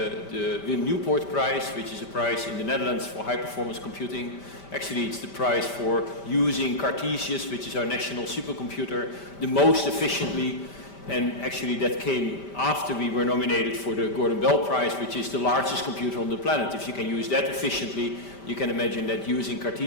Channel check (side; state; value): right; late; 5.1 ms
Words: Wim Newport Prize, which is a prize in the Netherlands for high performance computing. Actually, it's the prize for using Cartesius, which is our national supercomputer, the most efficiently. And actually that came after we were nominated for the Gordon Bell Prize, which is the largest computer on the planet. If you can use that efficiently, you can imagine that using